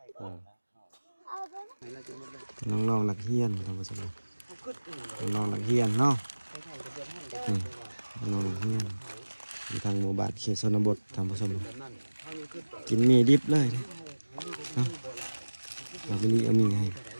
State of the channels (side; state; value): both; inverted; correlation -1.00